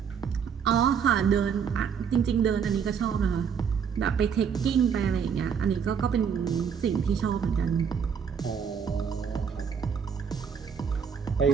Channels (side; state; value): left; quieter; 7.0 dB